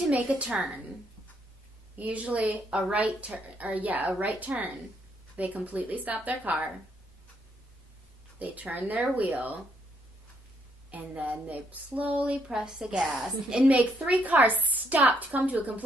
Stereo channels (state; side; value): normal; both; correlation 0.73